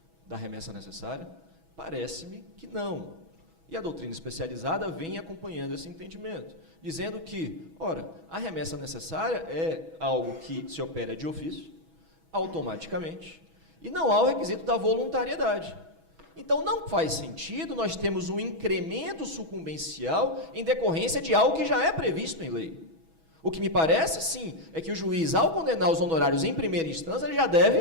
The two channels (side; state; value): left; late; 6.2 ms